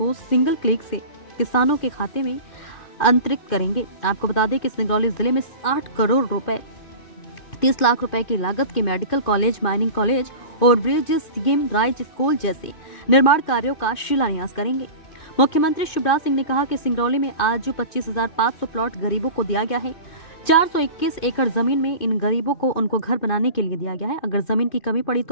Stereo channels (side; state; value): right; late; 2.5 ms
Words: सिंगल क्लिक से किसानों के खाते में अंतरित करेंगे। आपको बता दें कि सिंगरौली जिले में 60 करोड़ रुपए 30 लाख रुपए की लागत के मेडिकल कॉलेज, माइनिंग कॉलेज और ब्रिज, सीएम राइज स्कूल जैसे निर्माण कार्यों का शिलान्यास करेंगे। मुख्यमंत्री शिवराज सिंह ने कहा कि सिंगरौली में आज जो 25,500 प्लॉट गरीबों को दिया गया है, 421 एकड़ जमीन में इन गरीबों को उनको घर बनाने के लिए दिया गया है। अगर जमीन की कमी पड़ी